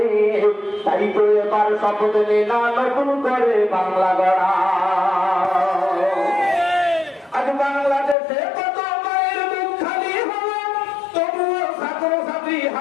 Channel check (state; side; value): drops out; right; at 8.2 s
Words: তাই তো এবার শপথ নে না নতুন করে বাংলা গড়া। আজ বাংলাদেশে কত মায়ের মুখ খালি হলো, তবুও ছাত্র ছাত্রী